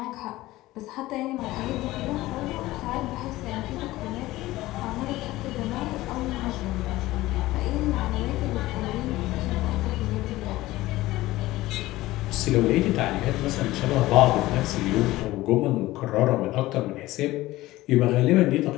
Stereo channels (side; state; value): right; quieter; 17.5 dB